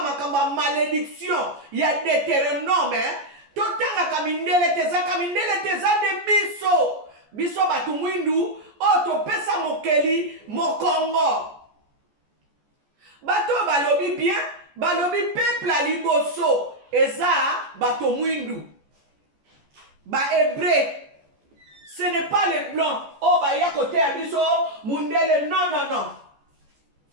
makambo ya malédiction ya Deutéronome totangaka mindele tezaka mindele teza nde biso bato mwindu oyo topesa mokeli mokongo bato balobi bien balobi peuple ya liboso eza bato mwindu bahébreu. Ce n'est pas les blancs. Oh, bah, il y a côté à biso, mundele, non, non, non.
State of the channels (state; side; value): late; left; 14 ms